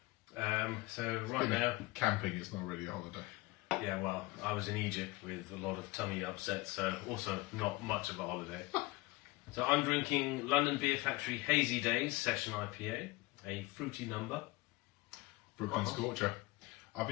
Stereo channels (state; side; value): quieter; right; 21.4 dB